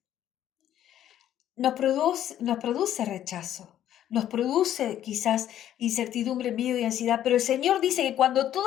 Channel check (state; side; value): quieter; right; 11.4 dB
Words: Nos produce rechazo, nos produce quizás incertidumbre, miedo y ansiedad, pero el Señor dice que cuando